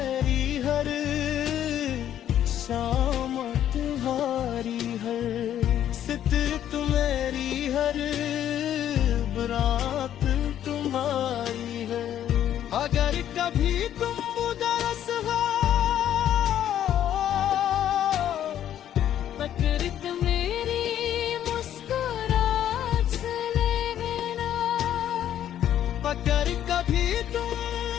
हर शाम तुम्हारी हर, सितर तुम्हारी हर रात तुम्हारी है। अगर कभी तुम उदास हो, पकड़त मेरी मुस्कुराहट से लेना। अगर कभी तुम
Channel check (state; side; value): quieter; right; 10.8 dB